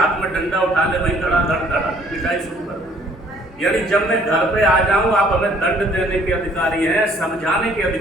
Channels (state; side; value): normal; both; correlation 0.60